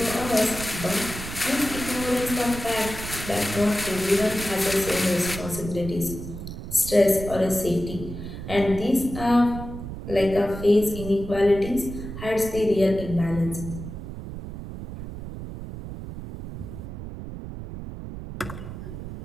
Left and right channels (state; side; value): noise; right; rumble, 9 dB below the sound